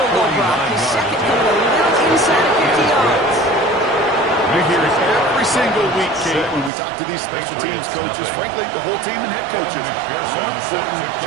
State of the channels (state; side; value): drops out; left; at 6.7 s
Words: goal drop. His second coming a little inside of 50 yards. We hear it every single week, Kate, when we talk to these special teams coaches, frankly, the whole team and head coaches. How important